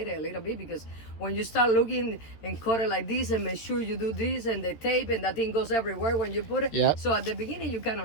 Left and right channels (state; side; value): late; right; 13 ms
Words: a little bit, because when you start looking and cut it like this and make sure you do this and the tape and that thing goes everywhere when you put it. Yep. So at the beginning, you're kind